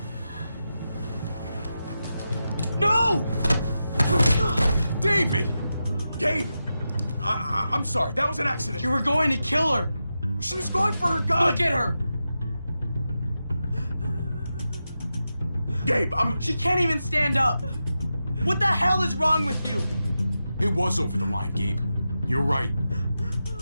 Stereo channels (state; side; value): inverted; both; correlation -0.90